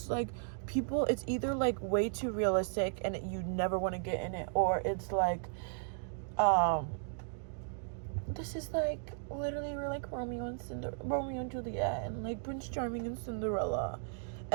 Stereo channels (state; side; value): silent; left; digital silence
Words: like, people, it's either like way too realistic and you never want to get in it, or it's like, this is like, literally, we're like Romeo and Juliet, and like Prince Charming and Cinderella,